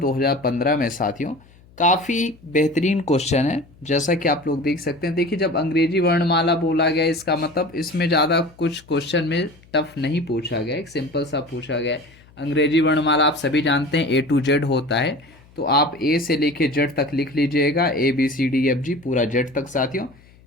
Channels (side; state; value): left; noise; hum, 27 dB below the sound